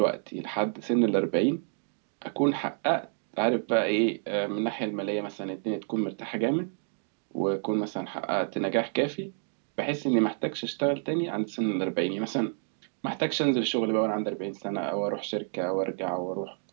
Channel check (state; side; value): silent; left; digital silence